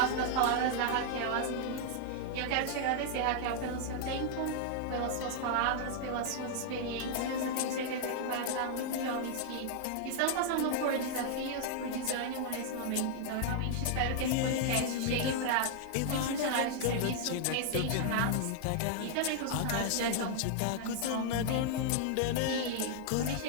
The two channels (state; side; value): different; both; correlation 0.00